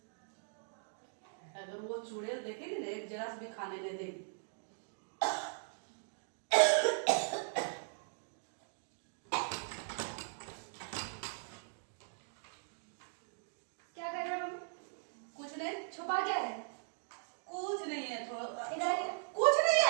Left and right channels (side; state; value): left; silent; digital silence